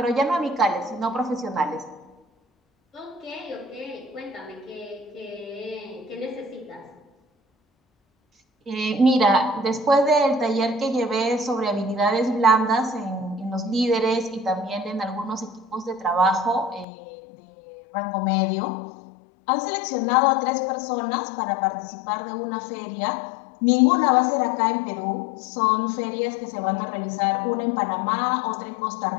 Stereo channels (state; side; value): drops out; right; at 16.9 s